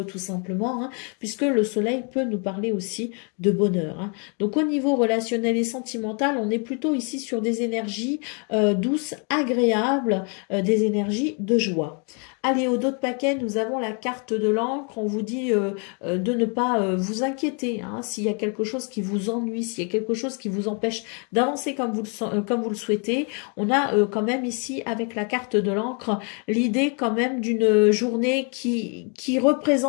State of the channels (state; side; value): quieter; right; 37.4 dB